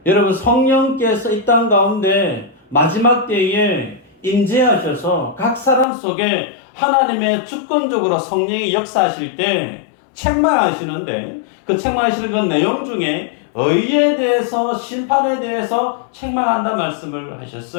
여러분, 성령께서 이 땅 가운데 마지막 때에 임재하셔서 각 사람 속에 하나님의 주권적으로 성령이 역사하실 때 책망하시는데, 그 책망하시는 그 내용 중에 의에 대해서, 심판에 대해서 책망한다 말씀을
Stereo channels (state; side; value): drops out; right; at 5.9 s